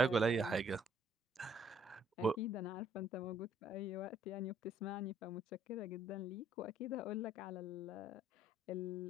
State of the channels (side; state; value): both; normal; correlation 0.63